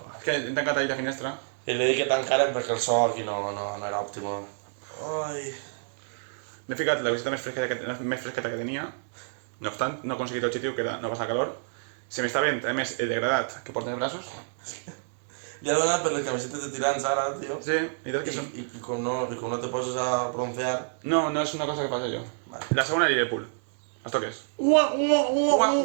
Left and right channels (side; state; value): left; silent; digital silence